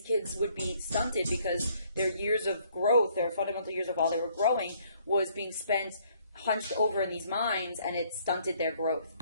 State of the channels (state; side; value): inverted; both; correlation -0.64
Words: kids would be stunted because their years of growth, their fundamental years of while they were growing, was being spent hunched over in these mines, and it stunted their growth.